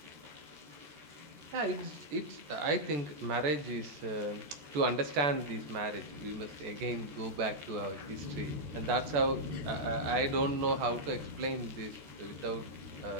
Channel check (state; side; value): late; left; 13 ms